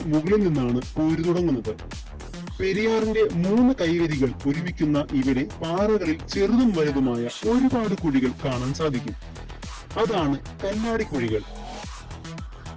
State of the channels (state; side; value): identical; both; correlation 1.00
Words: മുകളിൽ നിന്നാണ് പോര് തുടങ്ങുന്നത്. പെരിയാറിന്റെ 3 കൈവരികൾ ഒരുമിക്കുന്ന ഇവിടെ പാറകളിൽ ചെറുതും വലുതുമായ ഒരുപാട് കുഴികൾ കാണാൻ സാധിക്കും. അതാണ് കല്ലാടിക്കുഴികൾ.